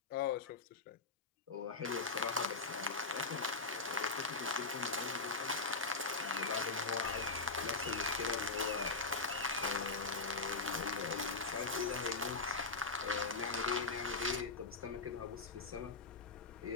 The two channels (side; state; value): right; quieter; 3.7 dB